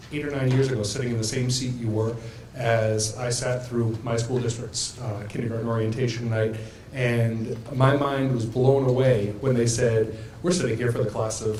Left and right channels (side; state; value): both; identical; correlation 1.00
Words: 8 or 9 years ago sitting in the same seat you were as I sat through my school district's kindergarten orientation night, and my mind was blown away when they said, we're sitting here for the class of